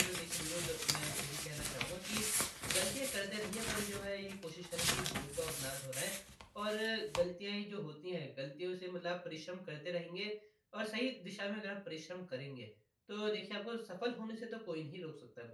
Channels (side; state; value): both; identical; correlation 1.00